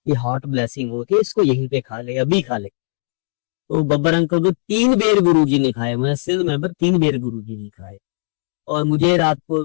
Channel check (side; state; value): right; silent; digital silence